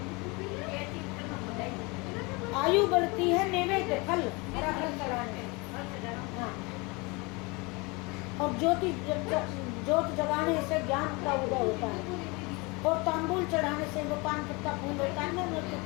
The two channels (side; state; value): right; quieter; 27.1 dB